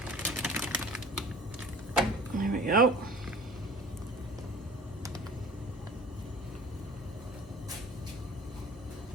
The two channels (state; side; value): normal; both; correlation 0.46